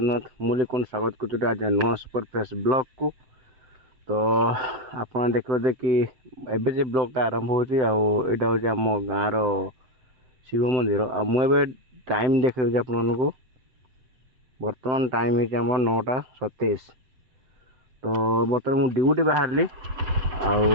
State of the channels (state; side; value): late; left; 7.8 ms